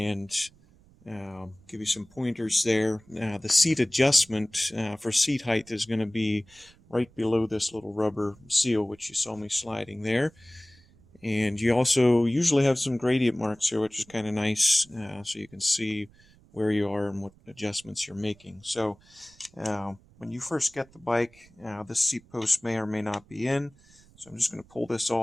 give you some pointers there. The seat adjustment for seat height is going to be right below this little rubber seal which you saw me sliding there. And you also usually have some gradient marks here, which is kind of nice, so you can see where you are and what adjustments you're making. So when you first get the bike, this seat post may or may not be in. So I'm just going to pull this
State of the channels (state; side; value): noise; right; rumble, 28 dB below the sound